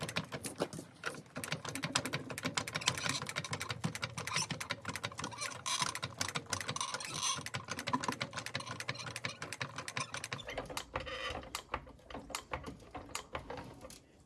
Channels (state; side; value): identical; both; correlation 1.00